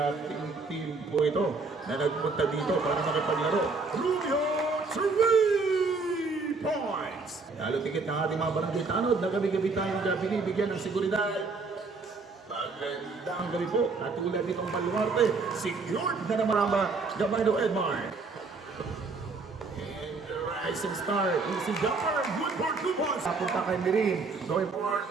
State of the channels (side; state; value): left; quieter; 4.1 dB